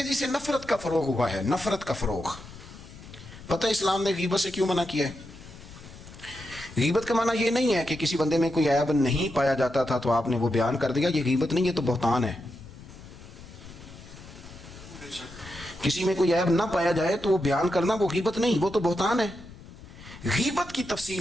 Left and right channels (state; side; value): noise; left; rumble, 17 dB below the sound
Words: سے نفرت کا فروغ ہوا ہے، نفرت کا فروغ۔ پتہ اسلام نے غیبت سے کیوں منع کیا ہے؟ غیبت کا معنی یہ نہیں ہے کہ کسی بندے میں کوئی عیب نہیں پایا جاتا تھا تو آپ نے وہ بیان کر دیا، یہ غیبت نہیں، یہ تو بہتان ہے۔ کسی میں کوئی عیب نہ پایا جائے تو وہ بیان کرنا وہ غیبت نہیں، وہ تو بہتان ہے۔ غیبت کی